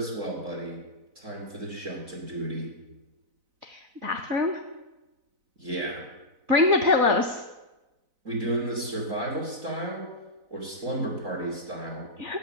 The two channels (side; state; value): left; late; 4.0 ms